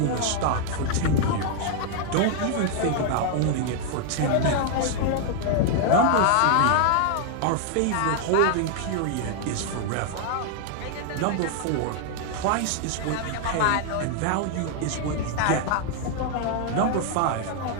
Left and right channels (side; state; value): both; different; correlation 0.00